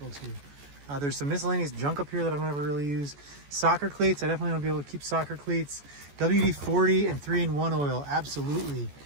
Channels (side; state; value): left; late; 14 ms